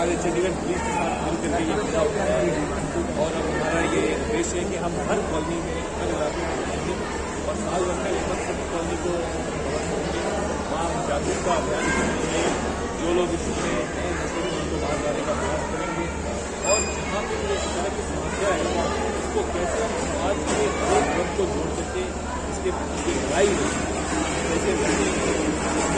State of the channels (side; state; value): both; identical; correlation 1.00